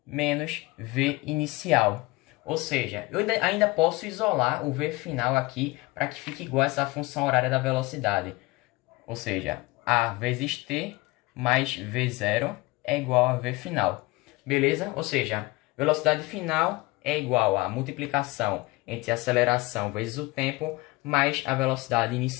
menos V inicial. Ou seja, eu ainda posso isolar o V final aqui para que fique igual a essa função horária da velocidade. Ou seja, A vezes T mais V0 é igual a V final. Beleza? Ou seja, velocidade final é igual a multiplicação entre a aceleração vezes o tempo mais a velocidade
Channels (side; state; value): right; quieter; 22.1 dB